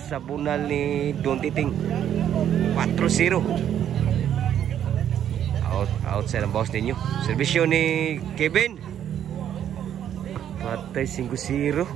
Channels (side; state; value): left; quieter; 10.0 dB